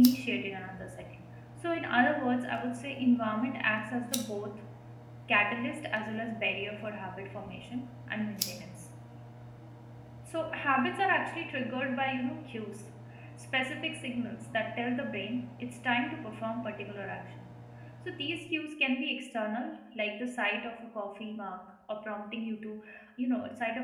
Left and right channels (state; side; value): identical; both; correlation 1.00